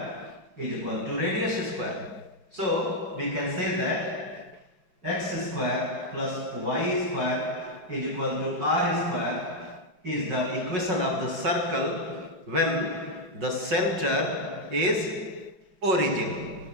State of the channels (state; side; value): late; left; 5.5 ms